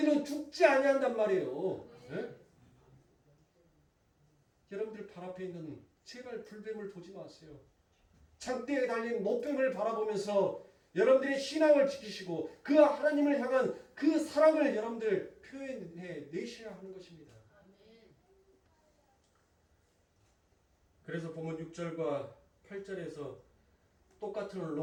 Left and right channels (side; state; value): both; identical; correlation 1.00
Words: 죽지 아니한단 말이에요. 네? 여러분들 발 앞에 있는 제발 불뱀을 보지 마세요. 장대에 달린 노뱀을 바라보면서 여러분들의 신앙을 지키시고 그 하나님을 향한 그 사랑을 여러분들 표현해 내셔야 하는 것입니다. 그래서 보면 6절과 8절에서 똑같은